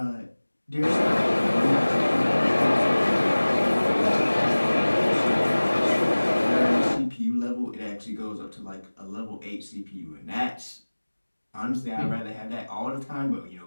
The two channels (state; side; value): inverted; both; correlation -1.00